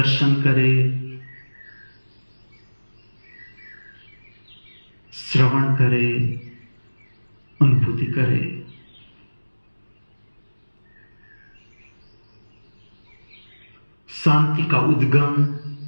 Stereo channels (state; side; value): inverted; both; correlation -1.00